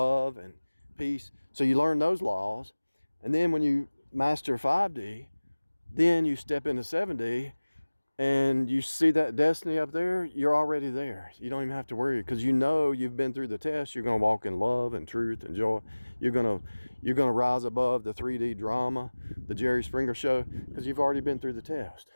and peace. So you learn those laws. And then when you master 5D, then you step into 7D and you see that destiny up there, you're already there. You don't even have to worry, because you know you've been through the test. You're going to walk in love and truth and joy. You're going to rise above the 3D drama, the Jerry Springer show, because you've already been through the test.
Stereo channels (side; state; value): both; inverted; correlation -1.00